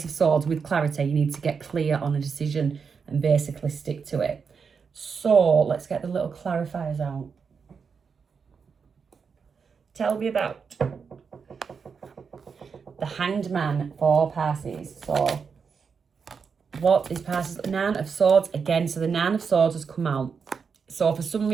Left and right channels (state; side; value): quieter; left; 5.8 dB